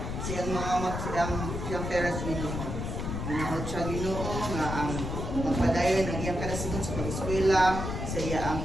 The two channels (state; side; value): noise; left; rumble, 4 dB below the sound